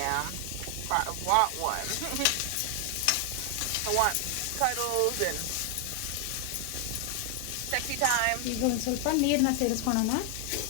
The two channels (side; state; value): both; different; correlation 0.00